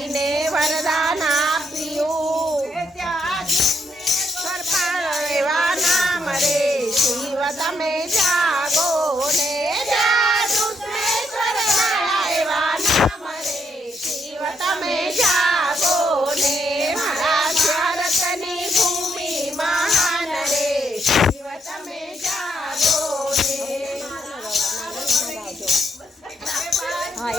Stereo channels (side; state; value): both; normal; correlation 0.76